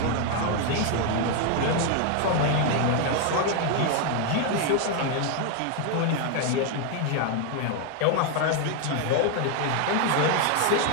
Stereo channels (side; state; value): both; different; correlation 0.01